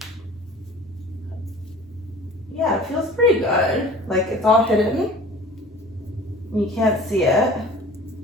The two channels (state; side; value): normal; both; correlation 0.44